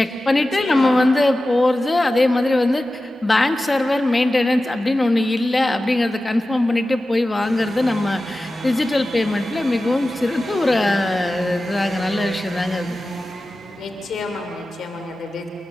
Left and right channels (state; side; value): normal; both; correlation 0.95